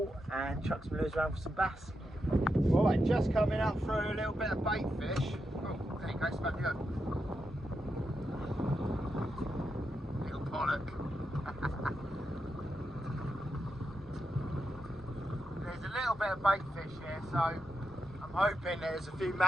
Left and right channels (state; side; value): normal; both; correlation 0.86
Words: and chuck some lures around for some bass. Right, just coming up through a little bit of bait fish. Oh, there you go, smack you. Little pollock. There's a little bit of bait fish here, so I'm hoping there's a few